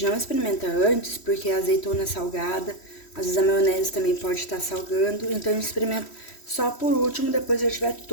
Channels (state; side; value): late; right; 3.1 ms